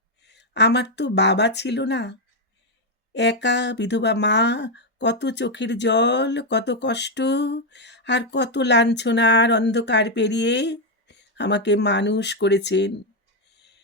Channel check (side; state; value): both; normal; correlation 0.02